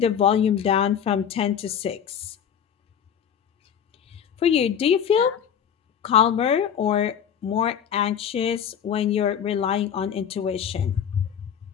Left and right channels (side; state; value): right; quieter; 8.4 dB